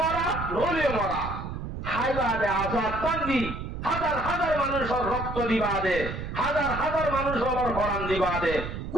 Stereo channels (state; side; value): noise; right; rumble, 7 dB below the sound